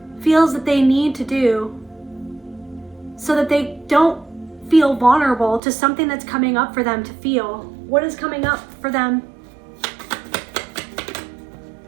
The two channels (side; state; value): left; drops out; at 5.6 s